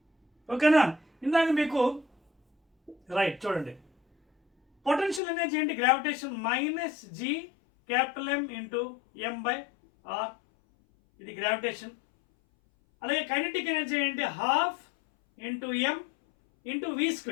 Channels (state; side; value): drops out; right; at 5.2 s